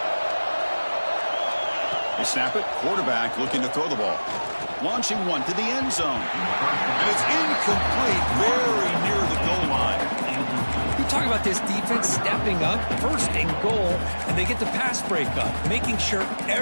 They snap it. Quarterback looking to throw the ball. Launching one to the end zone. And it's incomplete, very near the goal line. You talk about this defense stepping up, 1st and goal, and they get the pass breakup, making sure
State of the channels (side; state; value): both; inverted; correlation -1.00